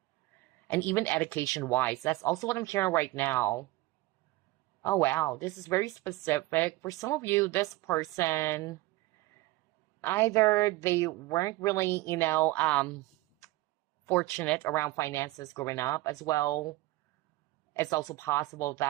And even education wise, that's also what I'm hearing right now. Oh, wow, this is very specific. For some of you, this person, either they weren't really, fortunate around finances growing up as well. It's also possible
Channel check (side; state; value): left; quieter; 19.3 dB